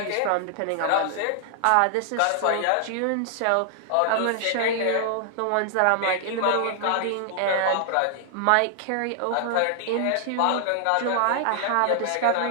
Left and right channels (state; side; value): different; both; correlation 0.00